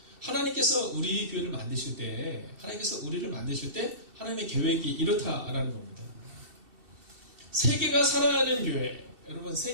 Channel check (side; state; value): left; late; 2.7 ms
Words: 하나님께서 우리 교회를 만드실 때, 하나님께서 우리를 만드실 때 하나님의 계획이 이렇다라는 겁니다. 세계가 사랑하는 교회, 여러분